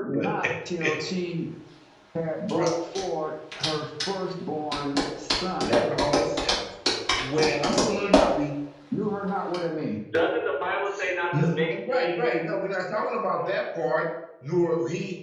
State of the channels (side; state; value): both; identical; correlation 1.00